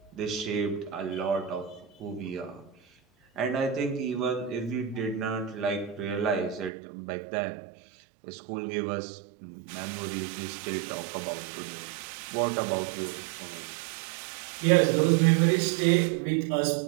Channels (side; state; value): left; drops out; at 6.7 s